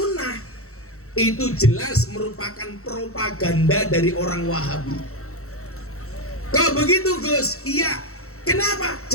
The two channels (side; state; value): right; late; 0.64 ms